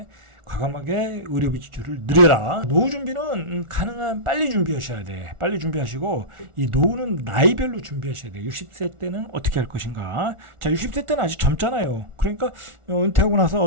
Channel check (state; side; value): late; left; 1.4 ms